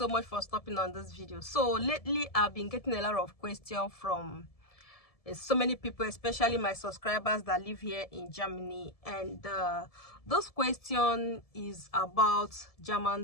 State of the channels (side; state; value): right; late; 1.7 ms